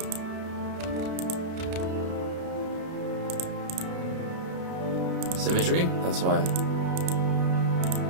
Symmetry? That's why.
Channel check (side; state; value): left; late; 32 ms